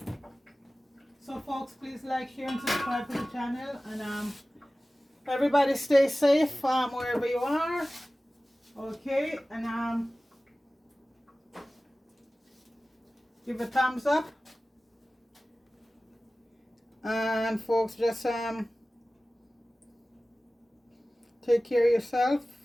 So folks, please like, share, and subscribe to the channel. And everybody stay safe wherever you are. Okay, and give a thumbs up. And folks, just take care of yourself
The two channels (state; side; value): normal; both; correlation 0.97